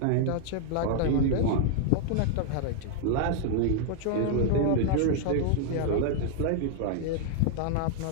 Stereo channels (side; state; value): both; different; correlation 0.00